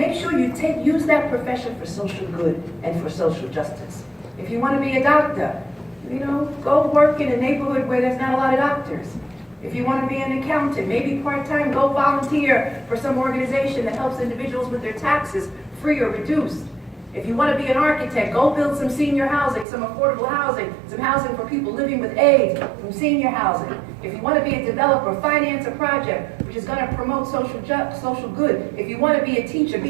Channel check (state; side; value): drops out; left; at 19.7 s